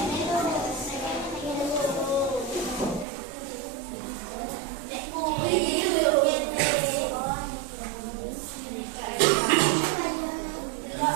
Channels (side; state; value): left; drops out; at 3.1 s